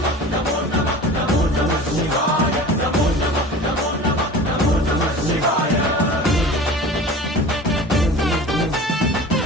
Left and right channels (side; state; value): both; normal; correlation 0.38